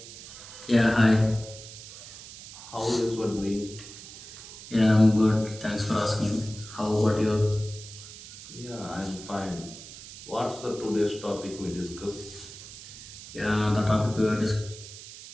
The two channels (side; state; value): right; noise; hiss, 15 dB below the sound